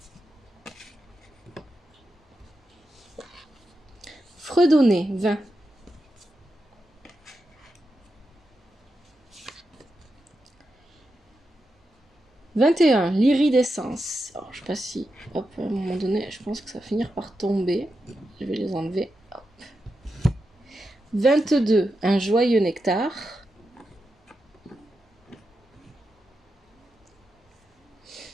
Fredonner, 20. 21. L'iridescence. Alors, je sais pas si... Hop, à un moment donné, je pense que ça va finir par tomber. Je vais les enlever. Hop. 22. Un joyeux nectar.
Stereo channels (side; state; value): both; normal; correlation 0.88